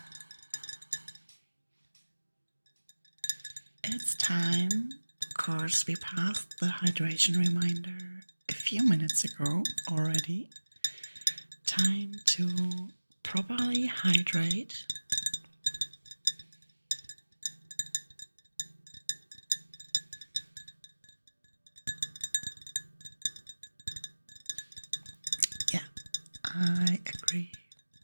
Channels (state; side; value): inverted; both; correlation -1.00